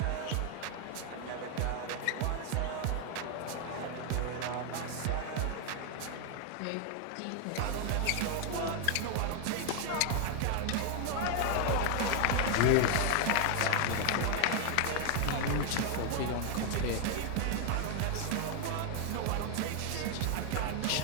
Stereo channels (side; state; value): both; different; correlation 0.00